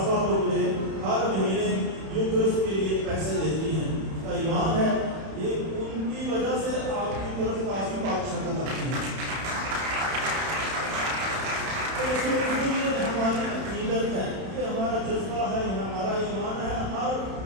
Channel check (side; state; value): left; late; 31 ms